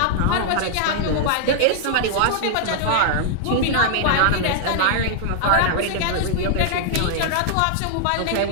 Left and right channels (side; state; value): both; different; correlation -0.01